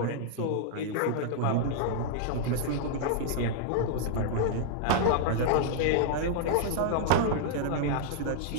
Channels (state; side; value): different; both; correlation -0.01